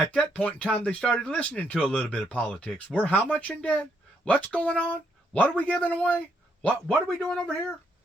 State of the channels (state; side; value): normal; both; correlation 0.74